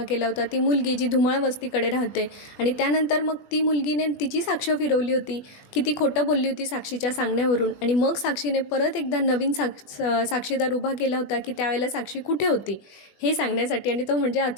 केला होता, ती मुलगी जी धुमाळ वस्तीकडे राहते, आणि त्यानंतर मग ती मुलगीने तिची साक्ष फिरवली होती की ती खोटं बोलली होती साक्षीच्या सांगण्यावरून. आणि मग साक्षीने परत एकदा नवीन साक्षीदार उभा केला होता की त्यावेळेला साक्षी कुठे होती हे सांगण्यासाठी, आणि तो म्हणजे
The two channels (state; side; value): late; right; 21 ms